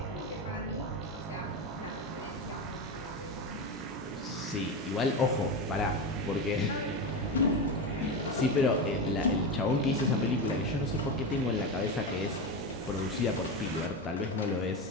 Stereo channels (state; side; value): normal; both; correlation 0.18